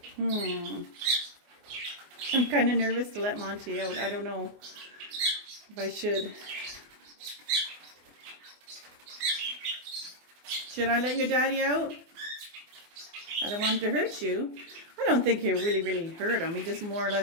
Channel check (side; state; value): left; late; 24 ms